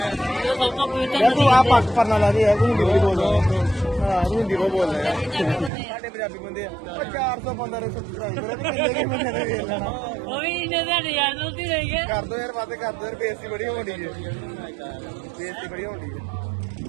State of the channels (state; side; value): drops out; left; at 5.7 s